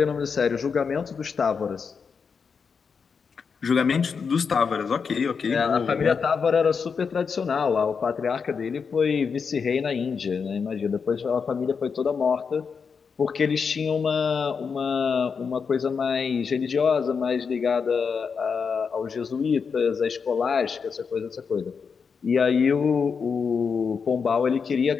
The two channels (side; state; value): right; quieter; 5.8 dB